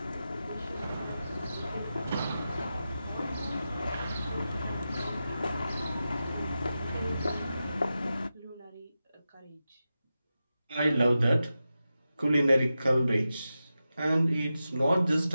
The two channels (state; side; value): inverted; both; correlation -0.91